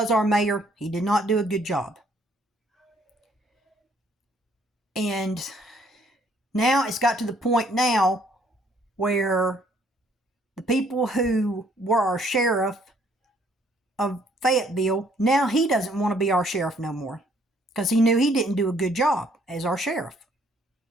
our mayor, he did not do a good job. And now it's got to the point now where the people who were our sheriff of Fayetteville, now he doesn't want to be our sheriff no more. Because he knew he didn't do a good job as our sheriff.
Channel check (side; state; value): both; normal; correlation 0.64